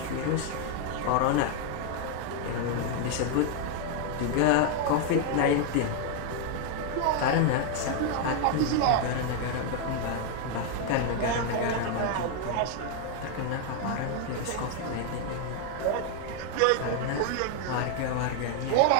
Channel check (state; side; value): different; both; correlation 0.00